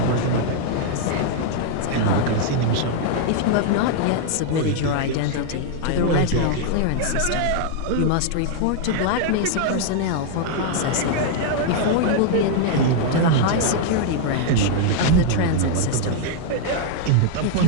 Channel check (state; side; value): different; both; correlation 0.00